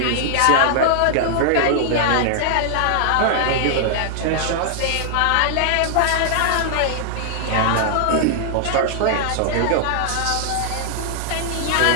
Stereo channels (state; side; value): different; both; correlation -0.01